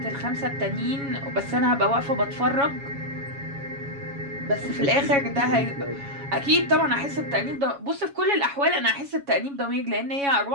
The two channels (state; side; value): late; left; 7.2 ms